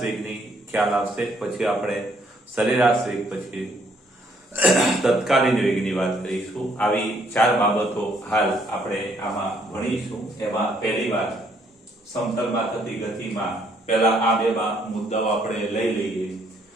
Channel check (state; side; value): normal; both; correlation 0.68